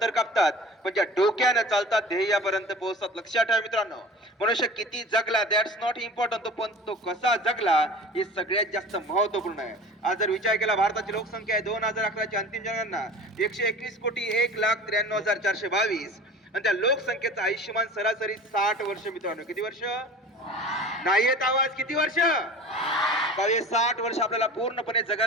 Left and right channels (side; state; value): both; normal; correlation 0.39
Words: कापतात पण ज्या डोक्याने चालतात ध्येयापर्यंत पोहोचतात. लक्षात ठेवा मित्रांनो, मनुष्य किती जगला दॅट्स नॉट इम्पॉर्टंट, पण तो कसा जगला हे सगळ्यात जास्त महत्वपूर्ण आहे. आज जर विचार केला भारताची लोकसंख्या आहे 2011 ची अंतिम जनगणना 121 कोटी 1,93,422 आणि त्या लोकसंख्येचं आयुष्यमान सरासरी 60 वर्ष. मित्रांनो किती वर्ष? नाही येत आवाज? किती वर्ष? 60 वर्ष आपल्याला पूर्णपणे